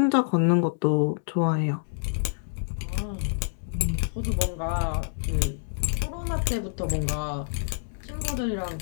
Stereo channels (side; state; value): right; silent; digital silence